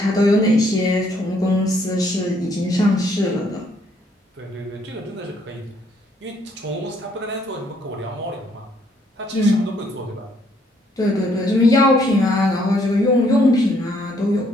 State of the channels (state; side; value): normal; both; correlation 0.68